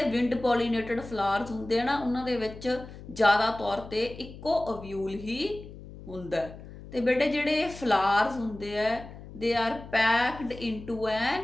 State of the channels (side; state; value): left; noise; hum, 15 dB below the sound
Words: ਵਿੰਡ ਪੋਲੀਨੇਟਡ ਫਲਾਵਰਸ ਹੁੰਦੇ ਆ ਨਾ ਉਹਨਾਂ ਦੇ ਵਿੱਚ ਜ਼ਿਆਦਾ ਤੌਰ 'ਤੇ ਇੱਕੋ ਅਵਿਊਲ ਹੀ ਹੁੰਦਾ। ਅਤੇ ਬੇਟੇ ਜਿਹੜੇ ਫਲਾਵਰਸ ਹੁੰਦੇ ਆ ਦੇ ਆਰ ਪੈਕਡ ਇਨਟੂ ਐਨ